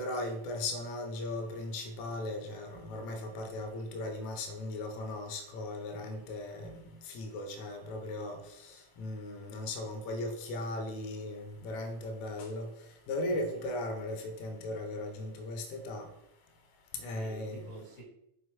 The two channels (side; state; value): right; late; 18 ms